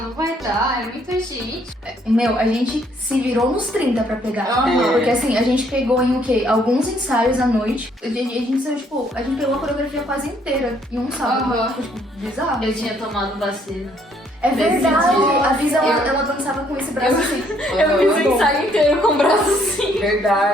não vai dar, é muita gente. Meu, a gente se virou nos 30 pra pegar. Aham. Porque assim, a gente pegou em o quê? Alguns ensaios à noite. A gente saiu, tipo, a gente pegou a coreografia quase inteira em um sábado. Aham. Foi, tipo, bizarro. Eu tinha tomado vacina. É verdade. dia. A Visa, ela dançava com esse braço assim. Eu fiz o ensaio inteiro com o braço assim.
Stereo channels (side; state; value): both; normal; correlation 0.67